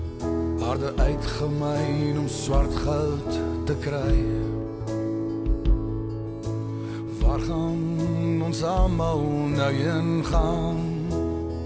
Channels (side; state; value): both; identical; correlation 1.00